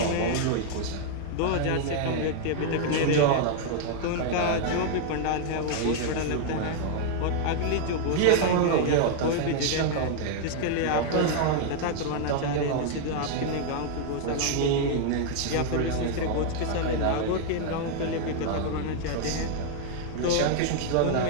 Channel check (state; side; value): different; both; correlation 0.00